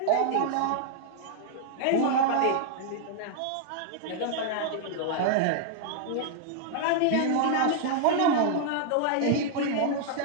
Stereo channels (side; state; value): both; different; correlation -0.01